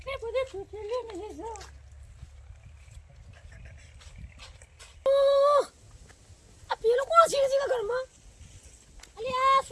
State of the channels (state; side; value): identical; both; correlation 1.00